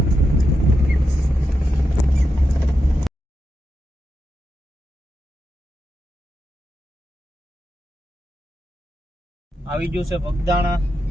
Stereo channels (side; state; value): both; normal; correlation 0.87